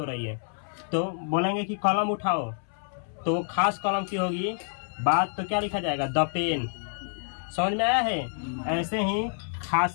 रही है। तो बोलेंगे कि कलम उठाओ, तो वो खास कलम की होगी बात, तो क्या लिखा जाएगा? The pen. समझ में आया है? ऐसे ही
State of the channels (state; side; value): silent; right; 59 dB below the other